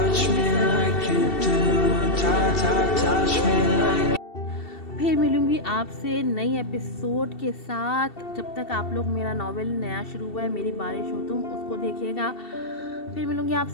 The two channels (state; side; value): late; right; 2.7 ms